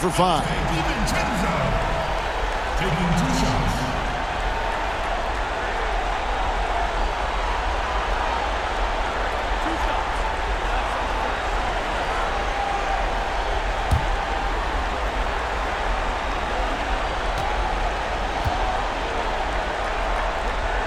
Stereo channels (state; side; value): identical; both; correlation 1.00